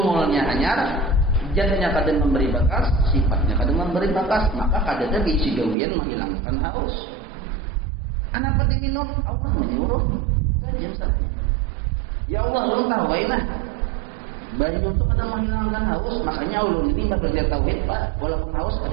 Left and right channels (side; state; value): left; drops out; at 5.8 s